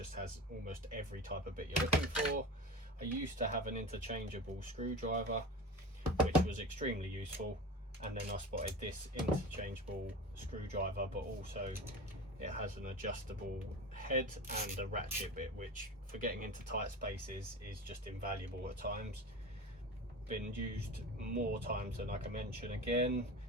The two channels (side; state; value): both; normal; correlation 0.31